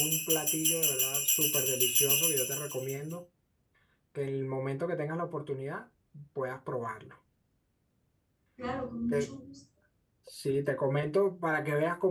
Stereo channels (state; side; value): identical; both; correlation 1.00